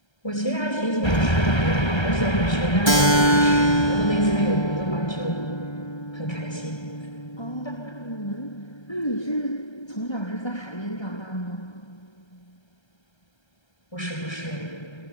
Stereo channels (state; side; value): late; right; 1.3 ms